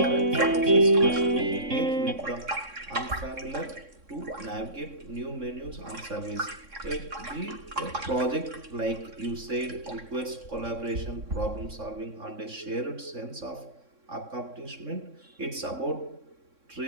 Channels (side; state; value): left; late; 3.6 ms